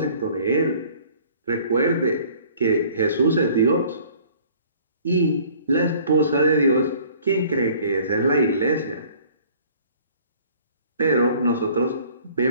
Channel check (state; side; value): inverted; both; correlation -0.53